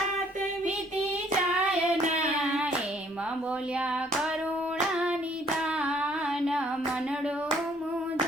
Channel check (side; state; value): both; normal; correlation 0.63